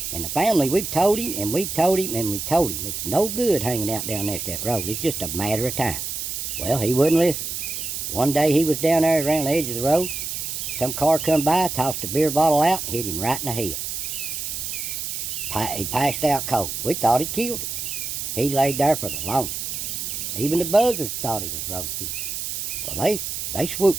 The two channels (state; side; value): noise; right; hiss, 4 dB below the sound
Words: And the family, we've told him, and we've told him, and we've told him. It's no good hanging out down next to that road. It's just a matter of time. Well, he wouldn't listen. One day he was down there around the edge of the road. Some car come by, tossed a beer bottle out, hit him right in the head. He passed out cold. We thought it killed him. He laid there for the longest. Even the buzzards thought he was roadkill. Well, they